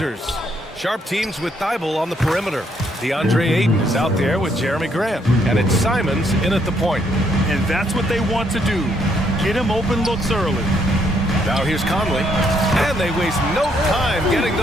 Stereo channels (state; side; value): normal; both; correlation 0.72